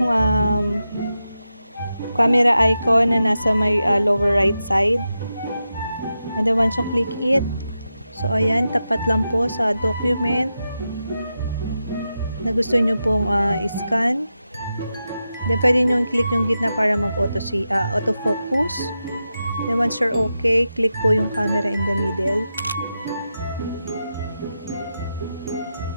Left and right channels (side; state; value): both; inverted; correlation -0.89